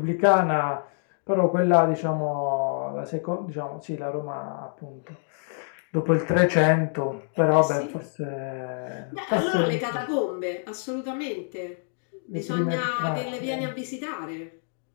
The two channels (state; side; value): silent; right; 61 dB below the other